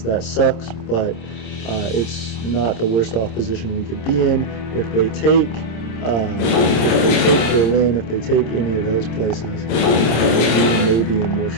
that sucks, but it's not the worst off position we could be in. If they take Berlin, if they take any of those places, we may be in more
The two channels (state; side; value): late; right; 26 ms